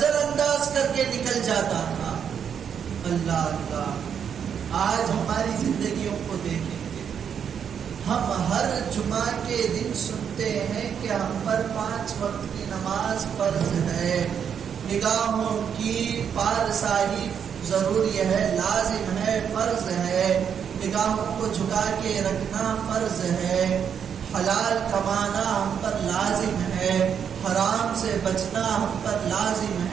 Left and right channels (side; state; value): left; quieter; 7.8 dB